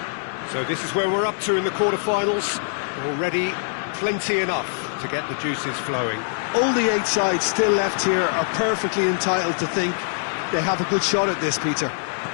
So this is where we're up to in the quarterfinals. Already plenty enough to get the juices flowing. All the 8 sides still left here are perfectly entitled to think they have a good shot at this, Peter.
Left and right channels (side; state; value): right; silent; digital silence